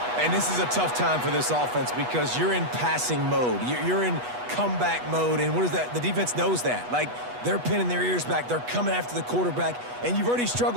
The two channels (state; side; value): late; left; 8.2 ms